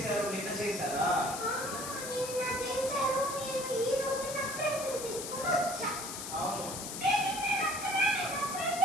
నిన్న చేశారా? అవును,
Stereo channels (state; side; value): noise; left; hiss, 7 dB below the sound